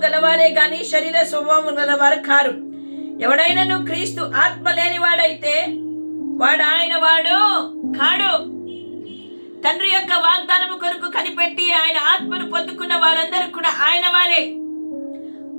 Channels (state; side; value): inverted; both; correlation -1.00